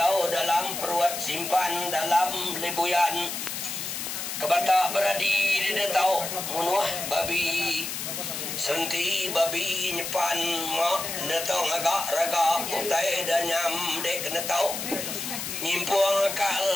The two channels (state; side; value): noise; left; hiss, 5 dB below the sound